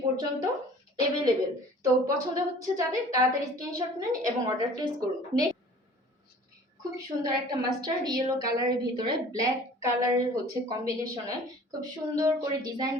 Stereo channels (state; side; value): normal; both; correlation 0.48